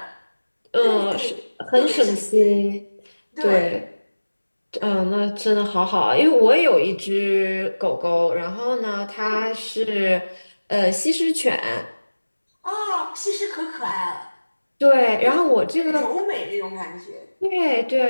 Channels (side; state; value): both; inverted; correlation -1.00